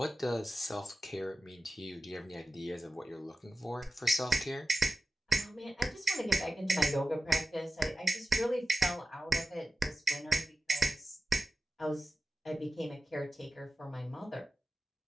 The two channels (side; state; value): both; normal; correlation 0.94